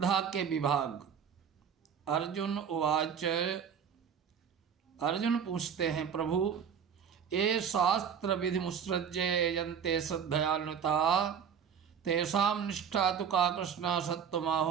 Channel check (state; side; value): quieter; left; 7.6 dB